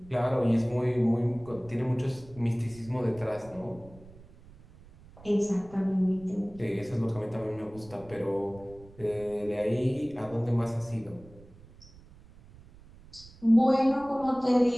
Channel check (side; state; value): right; noise; rumble, 22 dB below the sound